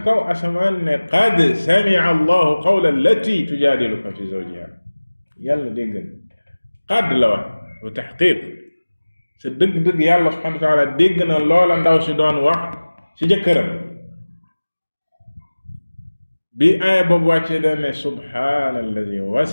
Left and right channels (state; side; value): inverted; both; correlation -1.00